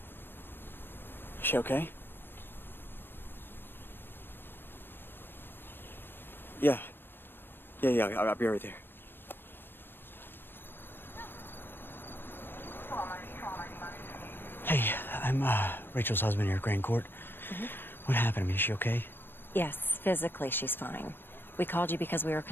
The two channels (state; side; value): late; right; 0.098 ms